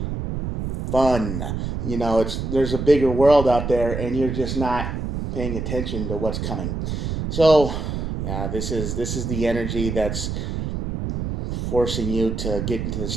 fun. There's a bigger world out there, and you're just not paying attention to what's coming. So, yeah, this is the energy that's forcing you to get into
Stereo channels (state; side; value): noise; right; rumble, 4 dB below the sound